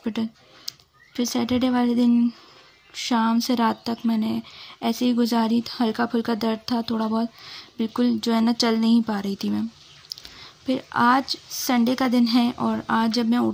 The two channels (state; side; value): identical; both; correlation 1.00